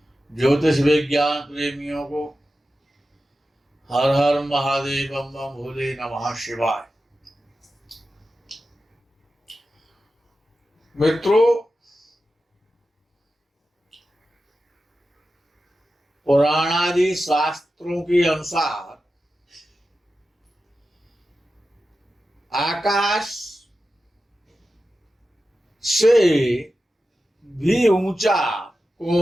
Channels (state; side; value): normal; both; correlation 0.92